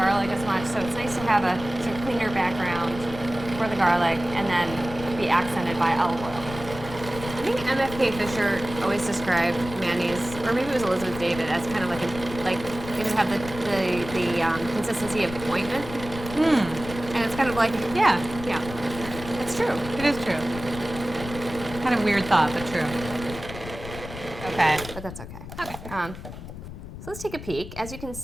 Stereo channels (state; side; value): noise; left; rumble, 12 dB below the sound